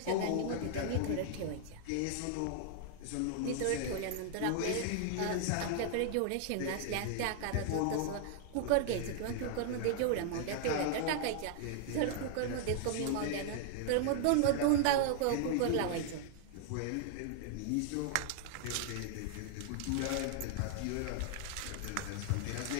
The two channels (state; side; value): different; both; correlation -0.01